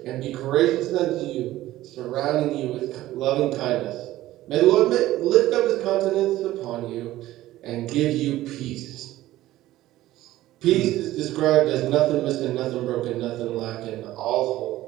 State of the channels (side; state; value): left; quieter; 15.4 dB